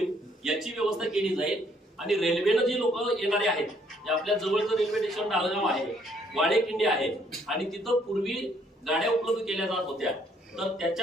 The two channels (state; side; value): normal; both; correlation 0.67